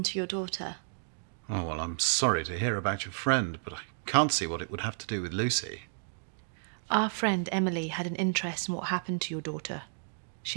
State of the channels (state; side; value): silent; left; digital silence